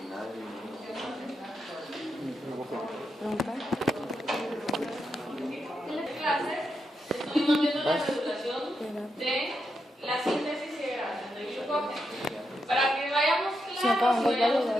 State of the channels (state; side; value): normal; both; correlation 0.84